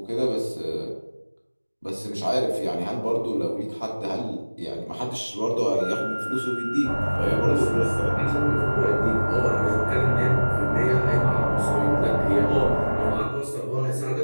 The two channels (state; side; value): inverted; both; correlation -1.00